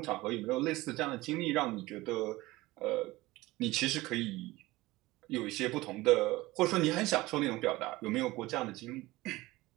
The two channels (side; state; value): left; quieter; 19.5 dB